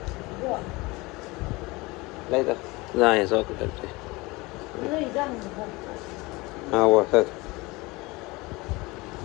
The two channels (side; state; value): right; quieter; 23.2 dB